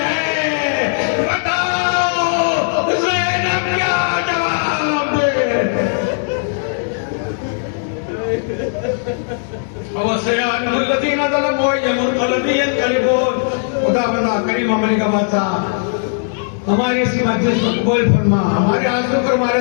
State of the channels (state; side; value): silent; right; digital silence